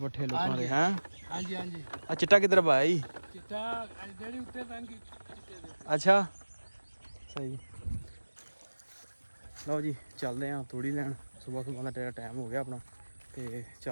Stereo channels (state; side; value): inverted; both; correlation -1.00